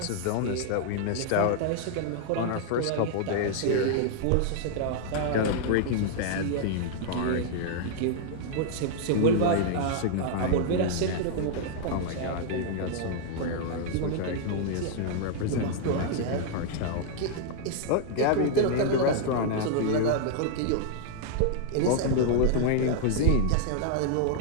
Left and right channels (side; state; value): both; different; correlation 0.00